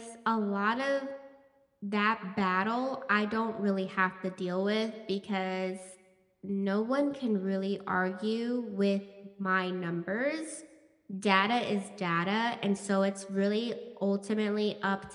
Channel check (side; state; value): both; identical; correlation 1.00